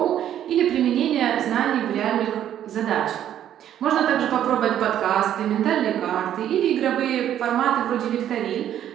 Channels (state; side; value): quieter; left; 10.8 dB